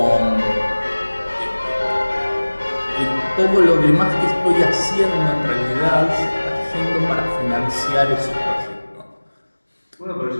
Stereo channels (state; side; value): inverted; both; correlation -1.00